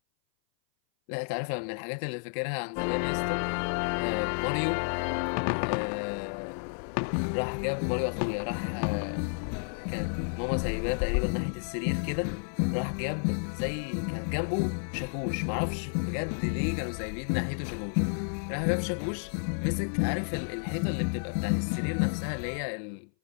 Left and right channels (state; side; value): silent; right; 57 dB below the other